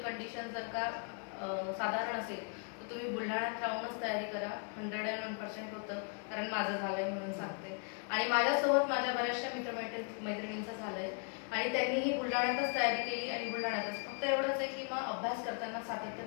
कंडिशन जर का साधारण असेल तर तुम्ही बुलढाण्यात राहूनच तयारी करा. 101% होतं, कारण माझं झालंय म्हणून सांगते. आणि माझ्यासोबत माझ्या बऱ्याचशा मैत्रिणींचं झालंय आणि त्यांनीही बुलढाण्यातच तयारी केली आणि बुलढाण्यातच. फक्त एवढंच आहे की मग अभ्यास करताना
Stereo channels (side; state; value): right; quieter; 37.5 dB